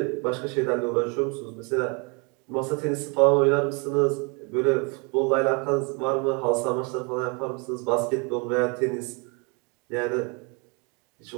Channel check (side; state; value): left; quieter; 32.1 dB